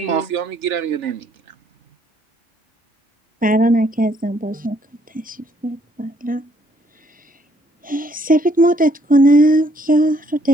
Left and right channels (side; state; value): both; normal; correlation 0.67